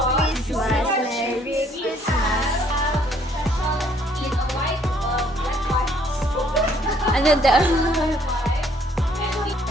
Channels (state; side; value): normal; both; correlation 0.64